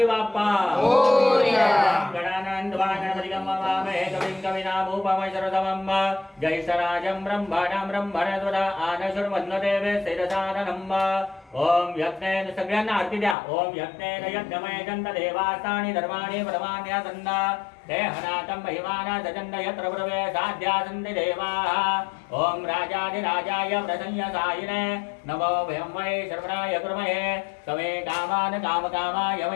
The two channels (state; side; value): drops out; right; at 13.4 s